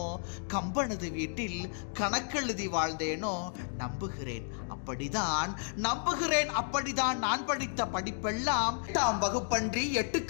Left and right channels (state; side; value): silent; right; digital silence